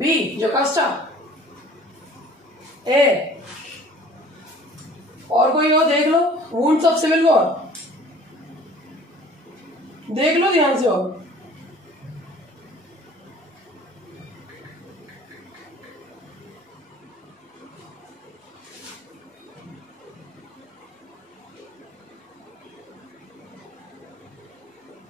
जोकास्टा, ए और कोई हो देख लो, वुंड्स ऑफ सिविल वॉर, देख लो ध्यान से। और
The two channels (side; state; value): both; normal; correlation 0.49